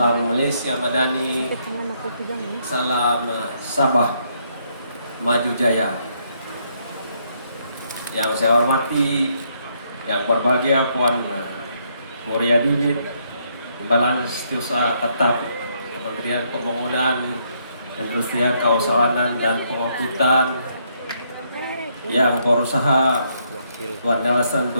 Malaysia Madani, salam Sabah Maju Jaya. Yang saya hormati, yang berbahagia Puan Muria Didit, Timbalan Setiausaha Tetap Kementerian Pembangunan, Industrian, Kawasanan dan Pengangkutan, yang berusaha Tuan Nelson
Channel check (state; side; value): inverted; both; correlation -0.73